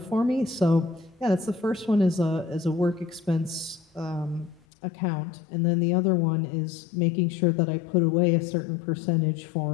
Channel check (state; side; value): drops out; right; at 4.6 s